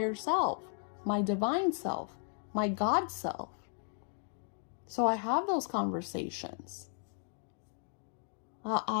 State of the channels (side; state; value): right; silent; 54 dB below the other